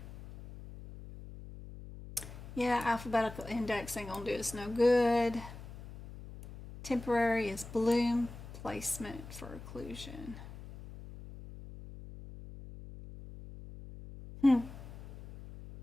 Yeah, alphabetical index ain't gonna do us no good. Temporary is balloon placement for occlusion.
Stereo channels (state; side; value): noise; left; hum, 14 dB below the sound